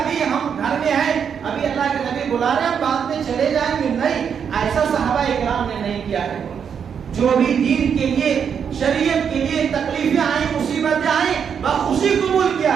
ہم گھر میں ہیں، ابھی اللہ کے نبی بلا رہے ہیں، بعد میں چلے جائیں گے، نہیں، ایسا صحابہ اکرام نے نہیں کیا ہے۔ جو بھی دین کے لیے، شریعت کے لیے تکلیفیں آئیں، مصیبتیں آئیں، بخوشی قبول کیا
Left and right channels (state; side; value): quieter; left; 7.4 dB